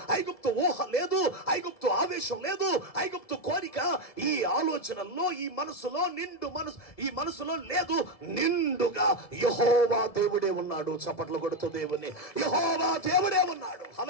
ఐగుప్తు ఊహ లేదు, ఐగుప్తు ఆవేశం లేదు, ఐగుప్తు కోరిక ఈ ఆలోచనల్లో, ఈ మనసులో ఈ మనసులో లేదు. నిండుగా యెహోవా దేవుడే ఉన్నాడు. చప్పట్లు కొడుతూ దేవుని, యెహోవా దేవుడే ఉన్నాడు.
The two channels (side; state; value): right; late; 1.7 ms